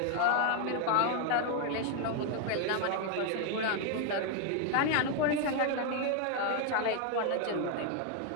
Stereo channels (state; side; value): different; both; correlation 0.00